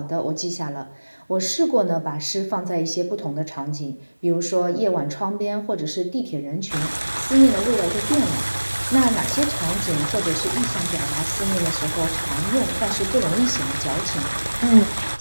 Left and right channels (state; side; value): inverted; both; correlation -1.00